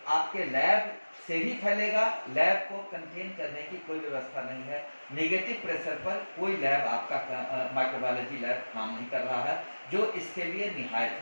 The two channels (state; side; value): inverted; both; correlation -1.00